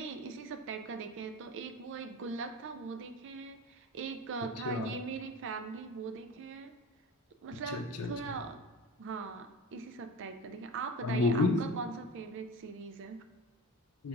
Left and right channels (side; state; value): both; normal; correlation 0.32